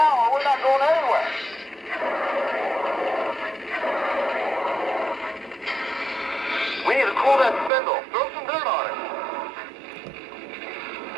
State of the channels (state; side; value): drops out; left; at 7.7 s